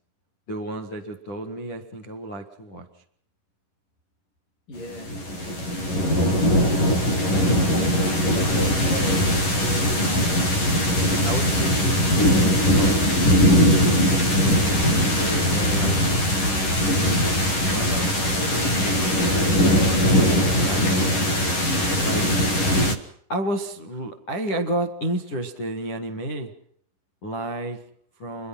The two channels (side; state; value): right; late; 11 ms